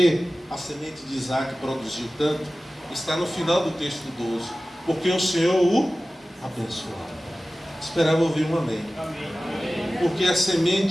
a semente de Isaac produziu tanto, está no final do texto 12. Porque o Senhor o abençoava. Esperava ouvir um amém. Porque a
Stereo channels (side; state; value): both; normal; correlation 0.96